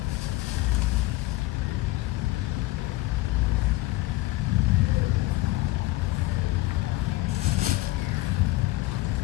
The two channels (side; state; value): right; quieter; 19.1 dB